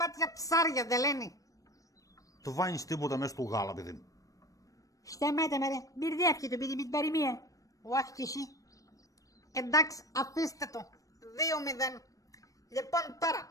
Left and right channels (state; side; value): late; right; 0.16 ms